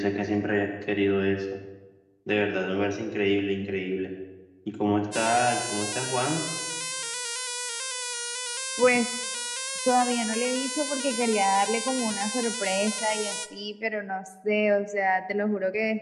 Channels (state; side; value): identical; both; correlation 1.00